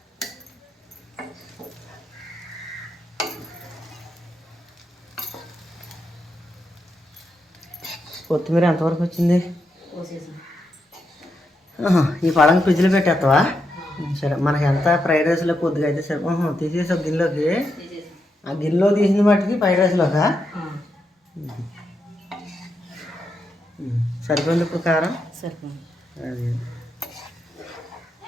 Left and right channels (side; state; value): both; normal; correlation 0.83